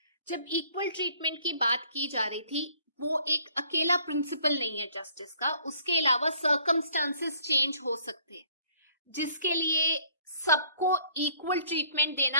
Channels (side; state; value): both; inverted; correlation -0.60